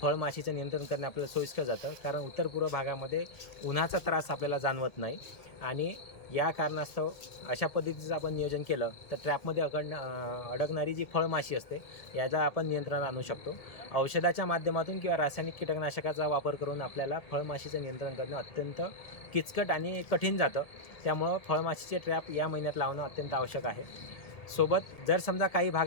फळमाशीचं नियंत्रण करणे आपल्याला सोयीस्कर जातं, कारण उत्तर पूर्व भागामध्ये उन्हाचा त्रास आपल्याला जाणवत नाही आणि या कारणास्तव अशा पद्धतीचं आपण नियोजन केलं तर ट्रॅपमध्ये अडकणारी जी फळमाशी असते याचा आपण नियंत्रणात आणू शकतो. औषधाच्या माध्यमातून किंवा रासायनिक कीटकनाशकाचा वापर करून आपल्याला फळमाशीचं नियंत्रण करणं अत्यंत किचकट आणि कठीण जातं. त्यामुळं फळमाशीचे ट्रॅप या महिन्यात लावणं अत्यंत आवश्यक आहे. सोबत जर समजा काही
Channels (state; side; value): late; right; 1.7 ms